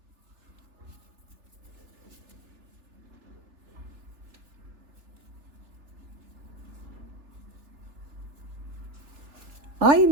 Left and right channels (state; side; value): late; left; 3.3 ms